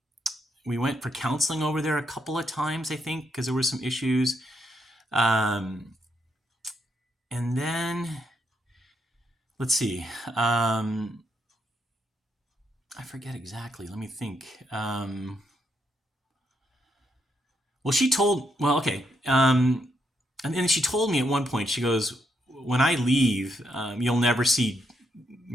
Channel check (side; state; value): both; normal; correlation 0.78